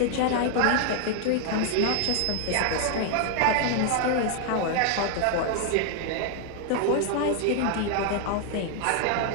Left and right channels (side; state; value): both; different; correlation 0.00